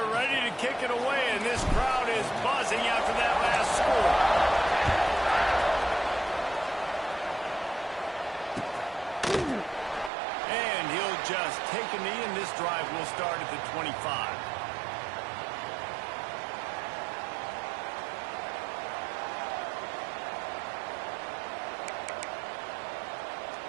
ready to kick it away, and this crowd is buzzing after that last score. And he'll just take a knee, and this drive will start at the 25.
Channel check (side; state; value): left; drops out; at 10.1 s